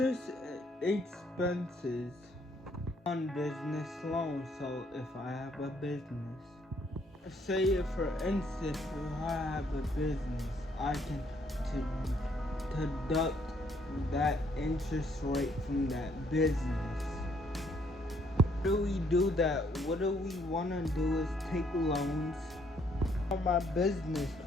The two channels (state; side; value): normal; both; correlation 0.68